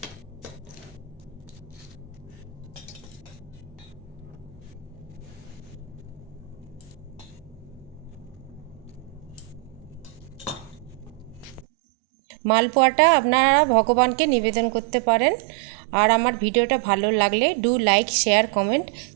মালপোয়াটা আপনারা ভগবানকে নিবেদন করতে পারেন। আর আমার ভিডিওটা ভালো লাগলে do like, share, comment,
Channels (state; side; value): drops out; left; at 11.7 s